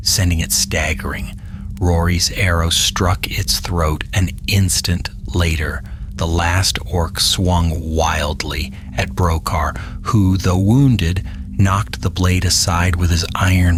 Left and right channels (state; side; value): identical; both; correlation 1.00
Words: sending it staggering. Rory's arrow struck its throat. An instant later, the last orc swung wildly at Brokar, who, though wounded, knocked the blade aside with his iron